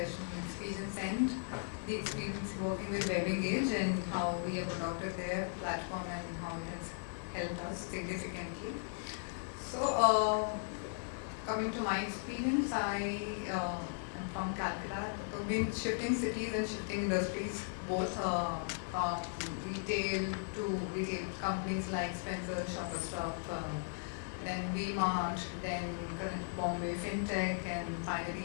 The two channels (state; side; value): silent; right; digital silence